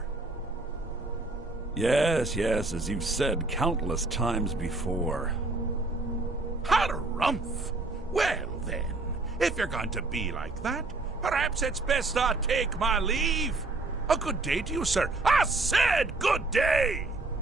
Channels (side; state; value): left; quieter; 3.1 dB